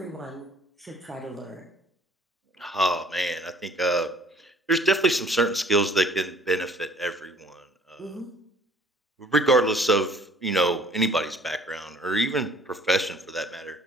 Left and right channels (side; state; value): both; normal; correlation 0.55